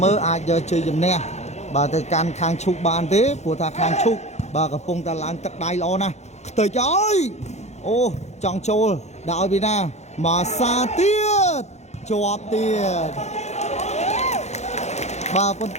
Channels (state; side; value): late; right; 0.33 ms